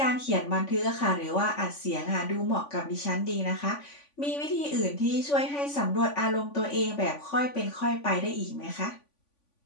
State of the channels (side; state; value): right; late; 3.5 ms